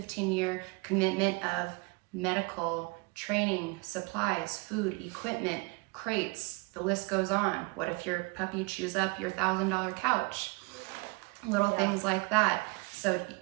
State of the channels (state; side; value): quieter; left; 29.1 dB